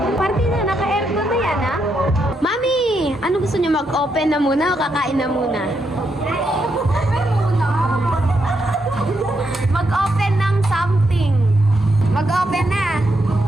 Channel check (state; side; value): normal; both; correlation 0.80